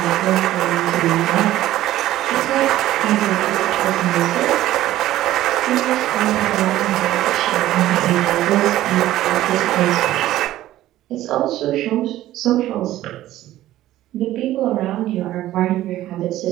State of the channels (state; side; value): quieter; left; 14.4 dB